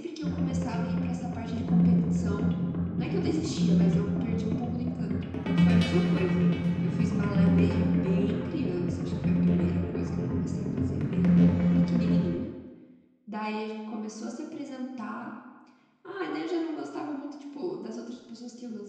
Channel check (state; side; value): identical; both; correlation 1.00